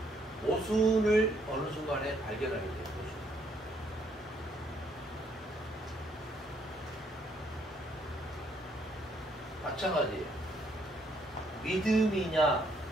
모순을 어느 순간에 발견하게 돼요. 모순. 마찬가지예요. 믿음이냐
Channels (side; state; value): both; normal; correlation 0.69